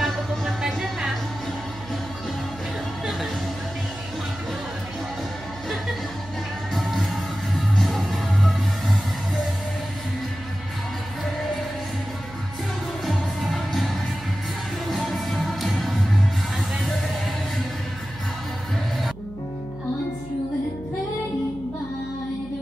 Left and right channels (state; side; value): noise; right; hum, 16 dB below the sound